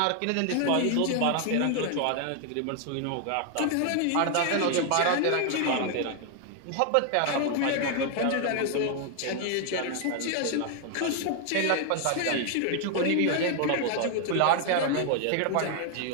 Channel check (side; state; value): both; different; correlation 0.00